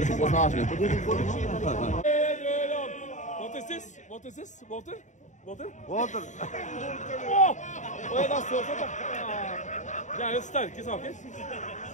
poznáš, ne? What is this? Water? Water. Åh! Och är det så där? Ja, det är starka saker.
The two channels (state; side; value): late; right; 0.35 ms